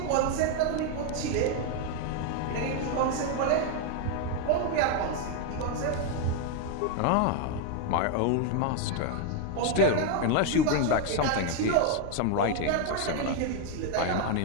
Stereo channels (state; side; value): different; both; correlation 0.01